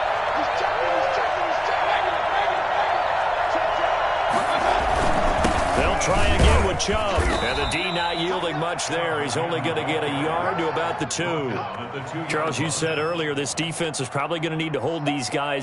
Try again with Chubb. And the D not yielding much there. He's only going to get a yard to about the 2. Charles, you said earlier this defense is probably going to need to hold these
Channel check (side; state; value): both; identical; correlation 1.00